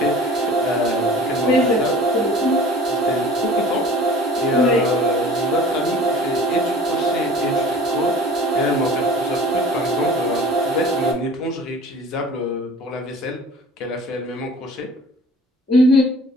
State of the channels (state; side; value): normal; both; correlation 0.45